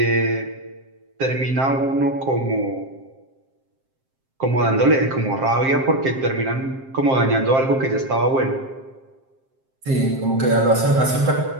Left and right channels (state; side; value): late; left; 7.6 ms